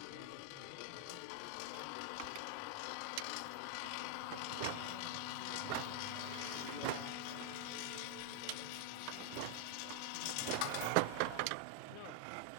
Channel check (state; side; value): different; both; correlation 0.00